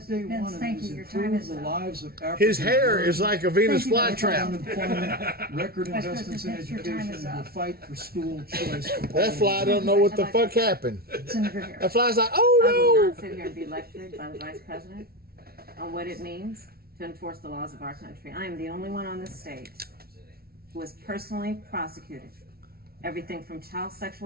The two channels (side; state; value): left; late; 0.44 ms